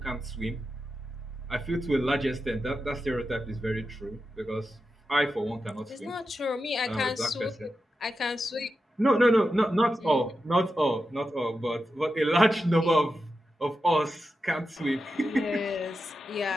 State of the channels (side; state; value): both; normal; correlation 0.89